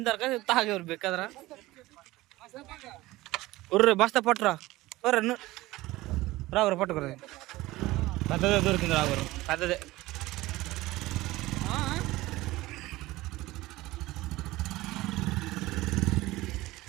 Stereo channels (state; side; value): quieter; left; 18.5 dB